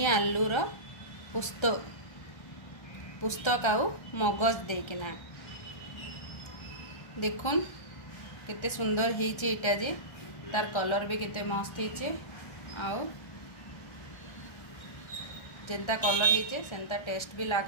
आलूर पुस्तक आउ मगज देकिना देखुन केते सुंदर होईचे एटा जे तार कलर भी केते मस्त होईचे आउ जेंता कलर होईचे सेंता टेस्ट भी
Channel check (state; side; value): late; right; 1.3 ms